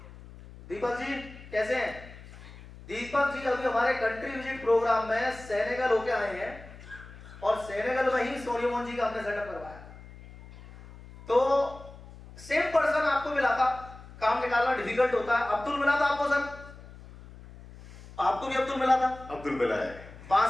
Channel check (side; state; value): left; noise; hum, 18 dB below the sound